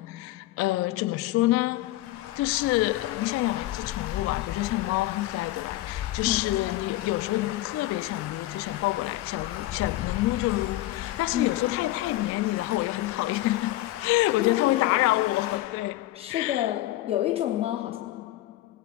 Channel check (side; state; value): right; quieter; 16.3 dB